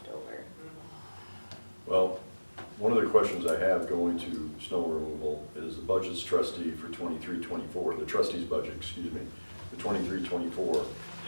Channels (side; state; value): both; inverted; correlation -1.00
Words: over. Well, one of the questions I have going to snow removal is the budget's trustee for 23-24, the trustee's budget, excuse me, the 23-24,